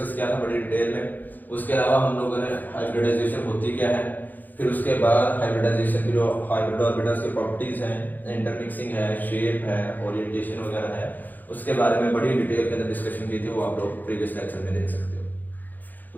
किया था बड़ी डिटेल में। उसके अलावा हम लोगों ने हाइब्रिडाइजेशन होती क्या है, फिर उसके बाद हाइब्रिडाइजेशन की जो हाइब्रिड ऑर्बिटल्स की प्रॉपर्टीज हैं, इंटरमिक्सिंग है, शेप है, ओरिएंटेशन वगैरह है, उसके बारे में बड़ी डिटेल के अंदर डिस्कशन की थी, वो आप लोग प्रीवियस लेक्चर में देख सकते हो। तो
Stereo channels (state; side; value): late; right; 0.085 ms